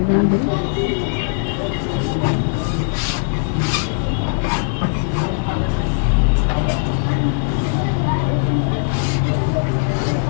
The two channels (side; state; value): right; silent; 64 dB below the other